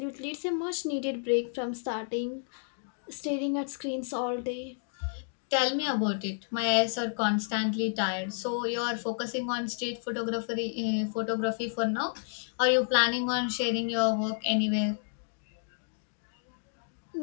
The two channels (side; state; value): right; silent; digital silence